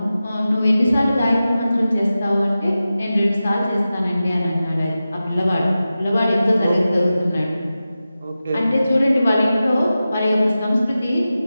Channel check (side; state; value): both; inverted; correlation -0.94